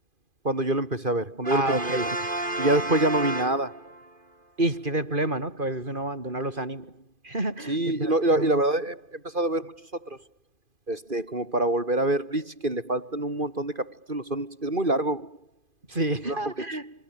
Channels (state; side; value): late; left; 2.5 ms